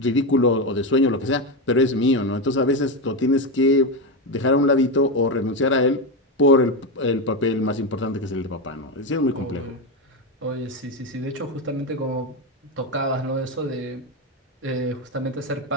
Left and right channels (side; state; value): both; normal; correlation 0.12